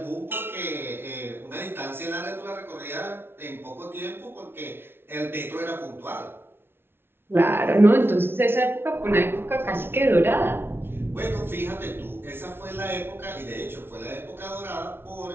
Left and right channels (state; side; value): late; left; 0.11 ms